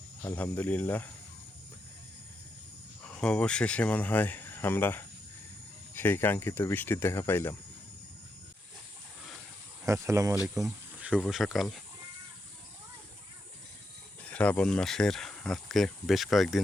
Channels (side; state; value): both; normal; correlation 0.83